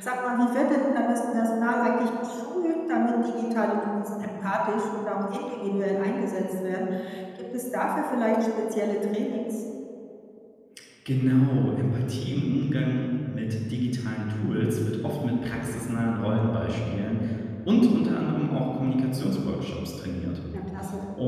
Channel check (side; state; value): both; identical; correlation 1.00